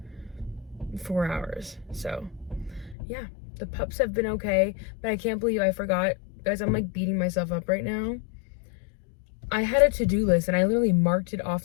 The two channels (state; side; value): drops out; right; at 3.0 s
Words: 4 hours. So yeah, the pups have been okay, but I can't believe I forgot, guys. I'm like beating myself up right now. I had a to-do list and I literally marked it